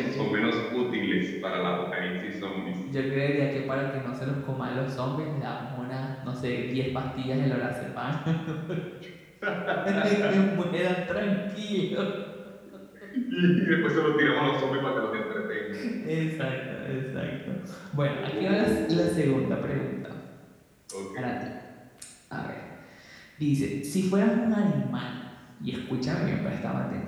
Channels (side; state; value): both; identical; correlation 1.00